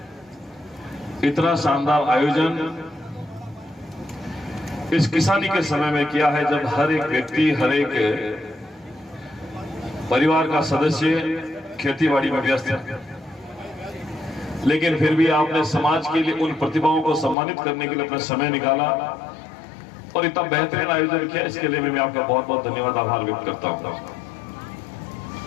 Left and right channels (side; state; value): right; drops out; at 17.4 s